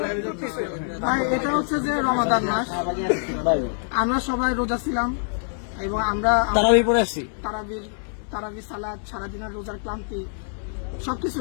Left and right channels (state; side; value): silent; right; digital silence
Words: ভাই এটা হচ্ছে যে রমাদান মাস, আমরা সবাই রোজা ছিলাম এবং আমরা তারাবি পড়ে আসছি। তারাবি সালাদ, সারাদিনের রোজার ক্লান্তি সবকিছু